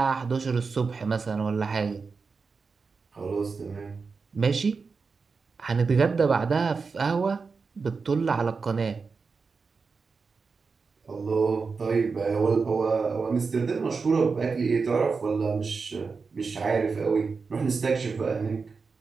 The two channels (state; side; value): quieter; left; 4.8 dB